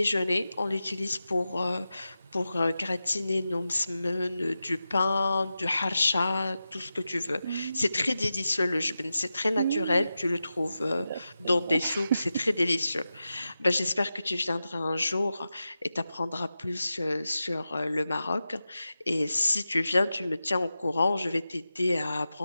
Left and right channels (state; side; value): inverted; both; correlation -0.92